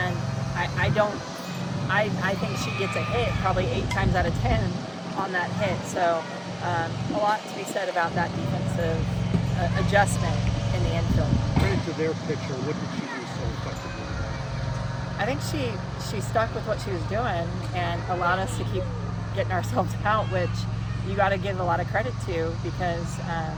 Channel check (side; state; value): both; identical; correlation 1.00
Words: I think she gets a hit probably 8 times out of 10 on that hit. So a lot to be said about that defensive adjustment in the infield. Credit to their pitcher. What did she do so I think she stuck with what she was doing and allowed us to keep getting ourselves out, which you got to give a lot of credit to, because